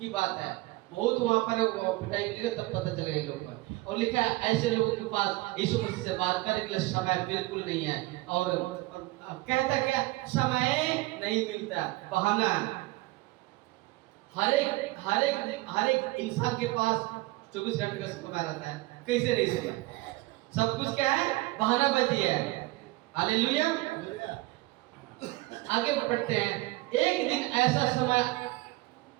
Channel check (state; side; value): quieter; left; 20.6 dB